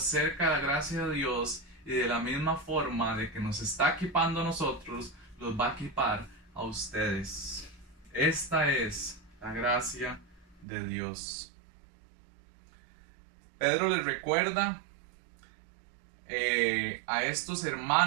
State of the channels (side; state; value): left; drops out; at 10.7 s